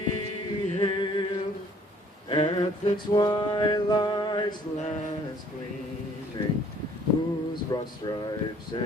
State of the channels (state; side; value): normal; both; correlation 0.58